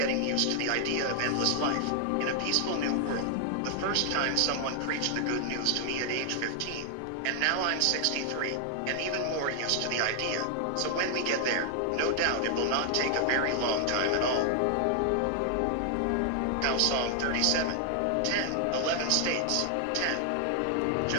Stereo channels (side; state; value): both; different; correlation 0.00